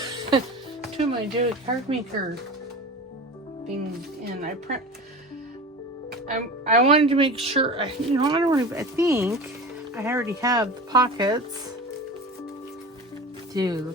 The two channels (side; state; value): both; normal; correlation 0.33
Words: of my David card maker things in. I wanted to make sure, I think I already have the pockets. Dude,